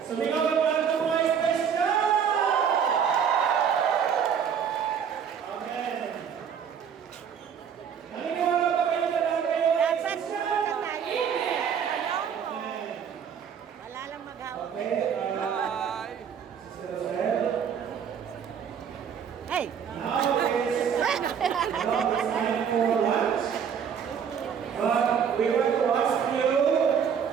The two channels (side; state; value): left; quieter; 7.6 dB